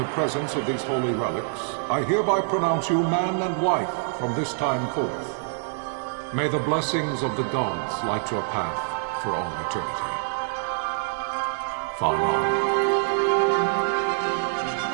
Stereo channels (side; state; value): left; silent; digital silence